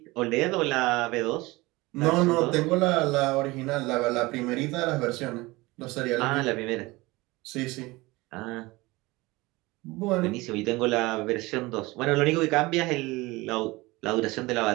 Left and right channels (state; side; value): quieter; left; 21.7 dB